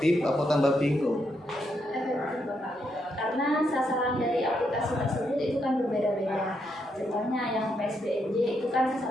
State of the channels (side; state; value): both; normal; correlation 0.79